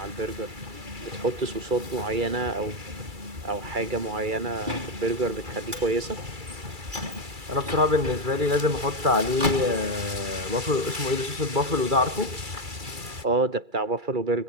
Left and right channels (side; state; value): left; late; 2.3 ms